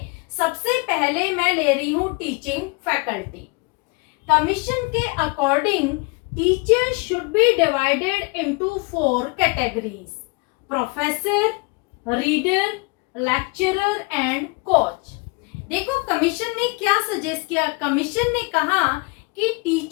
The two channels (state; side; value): quieter; right; 29.5 dB